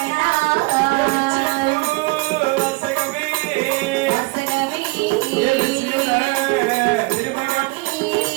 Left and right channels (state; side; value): quieter; left; 25.4 dB